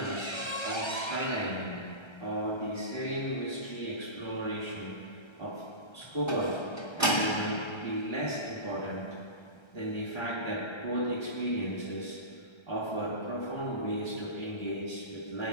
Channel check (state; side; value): late; right; 1.3 ms